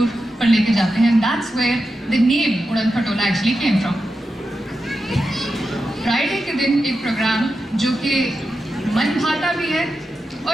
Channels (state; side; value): normal; both; correlation 0.89